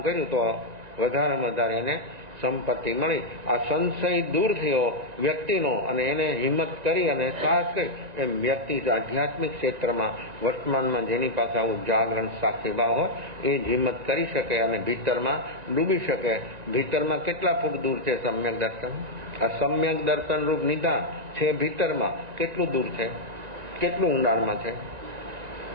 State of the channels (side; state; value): left; late; 1.9 ms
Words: કર્યું, તો વધારેમાં વધારે એને સંપત્તિ મળી. આ સંશય દૂર થયો વ્યક્તિનો, અને એને હિંમત કરી અને સાહસ કરી. એમ વ્યક્તિ આધ્યાત્મિક ક્ષેત્રમાં વર્તમાનમાં જેની પાસે આવું જાગરણ સાક્ષીભાવ હોય એ જ હિંમત કરી શકે અને ભીતરમાં ડૂબી શકે. ભીતરમાં કેટલા ફૂટ દૂર છે સમ્યક દર્શન? આ સમ્યક દર્શન રૂપ નિધાન છે ભીતરમાં કેટલું દૂર છે, કેટલું ઊંડાણમાં છે,